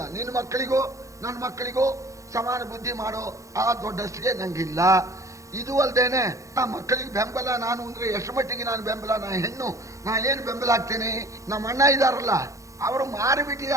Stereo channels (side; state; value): left; late; 0.15 ms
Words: ನಿನ್ನ ಮಕ್ಕಳಿಗೂ ನನ್ನ ಮಕ್ಕಳಿಗೂ ಸಮಾನ ಬುದ್ಧಿ ಮಾಡೋ ಆ ದೊಡ್ಡಷ್ಟಿಗೆ ನಂಗಿಲ್ಲ. ಇದು ಅಲ್ದೇನೆ ಆ ಮಕ್ಕಳಿಗೆ ಬೆಂಬಲ ನಾನು ಅಂದ್ರೆ ಎಷ್ಟು ಮಟ್ಟಿಗೆ ನಾನು ಬೆಂಬಲ? ನಾ ಹೆಣ್ಣು, ನಾ ಏನು ಬೆಂಬಲ ಆಗ್ತೇನೆ? ನಮ್ಮ ಅಣ್ಣ ಇದಾರಲ್ಲ, ಅವರು